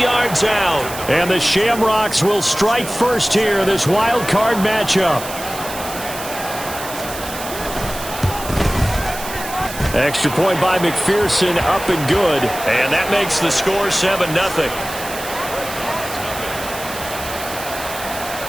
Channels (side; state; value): right; noise; hiss, 11 dB below the sound